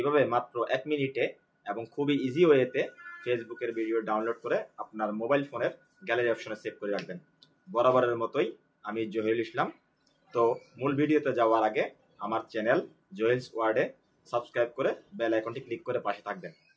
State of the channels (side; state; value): both; identical; correlation 1.00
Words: মাত্র 1 মিনিটে এবং খুবই ইজি ওয়েতে ফেসবুকের ভিডিও ডাউনলোড করে আপনার মোবাইল ফোনের গ্যালারি অপশনে সেভ করে রাখবেন। বরাবরের মতোই আমি জহিরুল ইসলাম। তো মূল ভিডিওতে যাওয়ার আগে আমার চ্যানেল জহিলস ওয়ার্ল্ডে সাবস্ক্রাইব করে বেল আইকনটি ক্লিক করে পাশে থাকবেন।